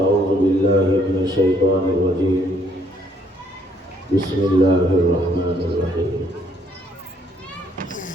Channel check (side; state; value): both; normal; correlation 0.67